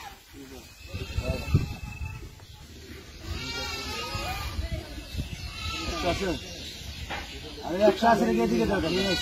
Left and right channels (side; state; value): both; identical; correlation 1.00